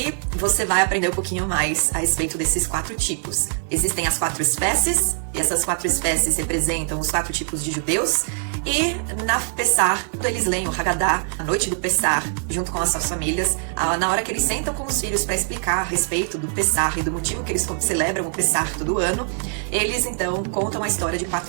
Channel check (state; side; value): silent; left; 64 dB below the other